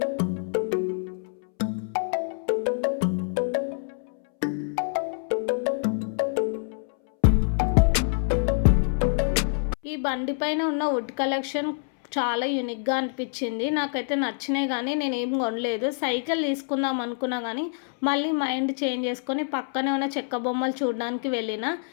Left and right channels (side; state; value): right; silent; 61 dB below the other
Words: ఈ బండి పైన ఉన్న వుడ్ కలెక్షన్ చాలా యూనిక్గా అనిపించింది. నాకైతే నచ్చినాయి కానీ నేను ఏం కొనలేదు. సైకిల్ తీసుకుందాం అనుకున్నా కానీ మళ్ళీ మైండ్ చేంజ్ చేసుకొని పక్కనే ఉన్న చెక్క బొమ్మలు చూడడానికి వెళ్ళిన.